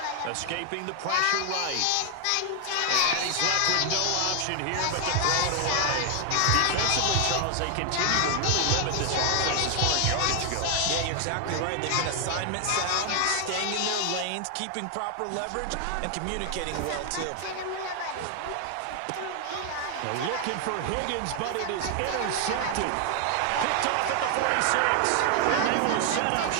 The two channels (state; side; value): different; both; correlation 0.00